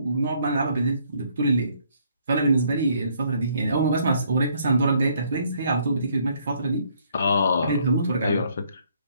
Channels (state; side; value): inverted; both; correlation -0.67